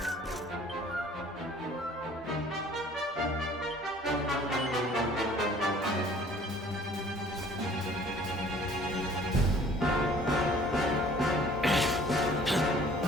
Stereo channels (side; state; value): both; normal; correlation 0.53